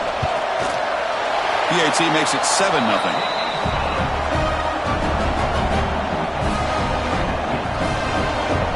PAT makes it 7-0.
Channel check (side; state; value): both; identical; correlation 1.00